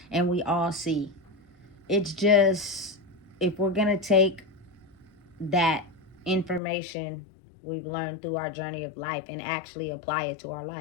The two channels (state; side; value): drops out; right; at 6.6 s